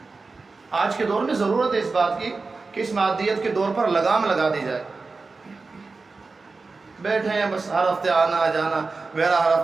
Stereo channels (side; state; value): left; quieter; 4.0 dB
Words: آج کے دور میں ضرورت ہے اس بات کی کہ اس مادیت کے دور پر لگام لگا دی جائے۔ بیٹھے ہیں بس ہر ہفتے آنا جانا، میرا ہر